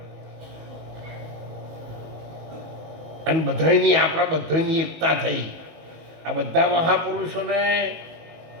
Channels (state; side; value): late; left; 19 ms